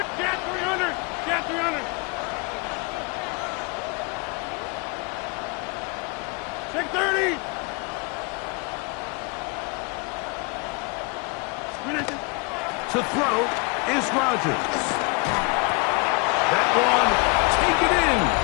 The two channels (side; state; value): right; quieter; 30.3 dB